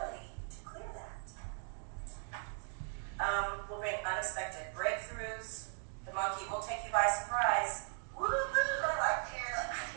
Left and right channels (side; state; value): left; silent; 52 dB below the other